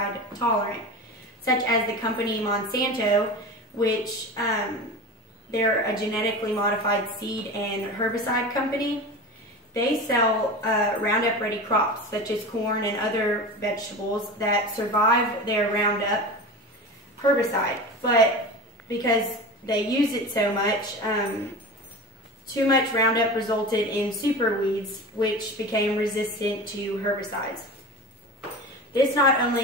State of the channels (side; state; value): both; normal; correlation 0.30